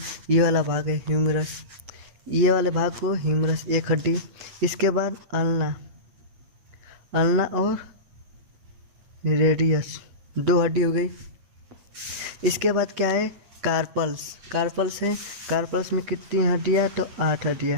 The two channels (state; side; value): late; left; 8.9 ms